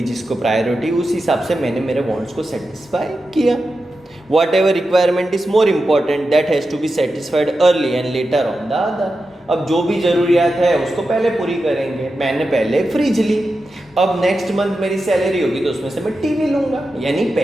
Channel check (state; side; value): normal; both; correlation 0.90